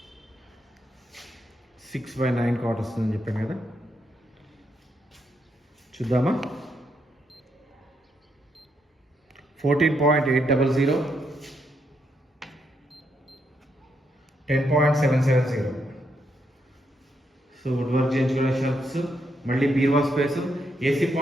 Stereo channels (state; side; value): normal; both; correlation 0.78